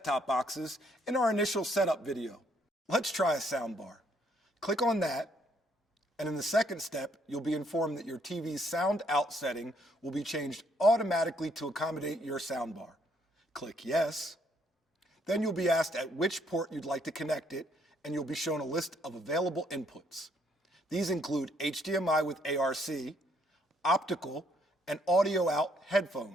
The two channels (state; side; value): normal; both; correlation 0.69